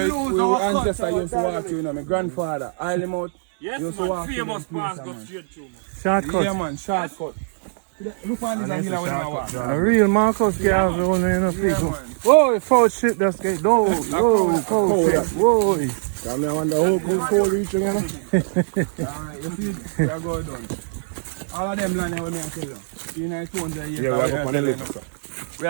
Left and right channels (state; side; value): silent; left; 64 dB below the other